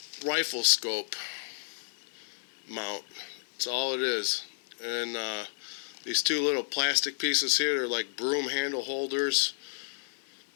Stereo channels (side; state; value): right; silent; digital silence